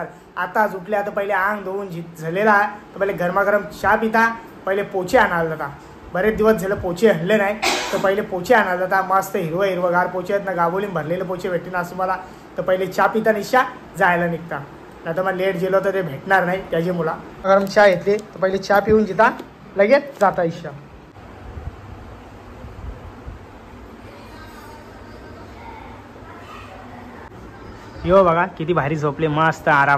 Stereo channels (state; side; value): identical; both; correlation 1.00